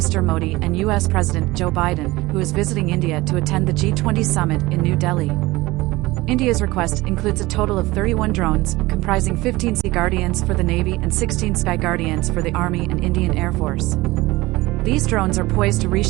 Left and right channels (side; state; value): left; quieter; 20.1 dB